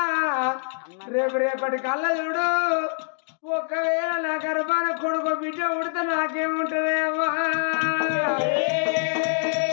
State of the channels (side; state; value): right; silent; digital silence